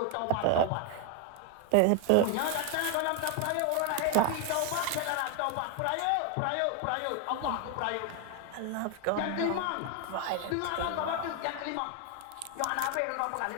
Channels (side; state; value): both; different; correlation 0.01